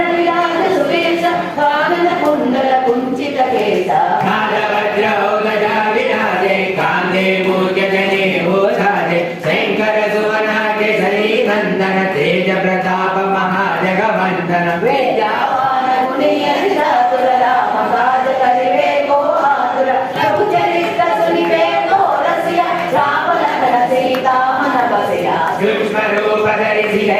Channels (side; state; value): both; identical; correlation 1.00